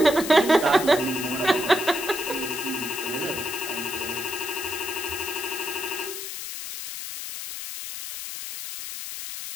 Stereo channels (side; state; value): left; noise; hiss, 7 dB below the sound